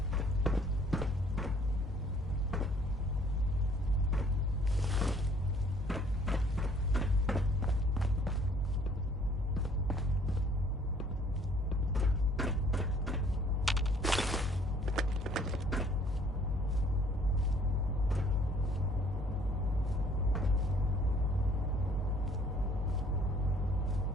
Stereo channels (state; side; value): normal; both; correlation 0.59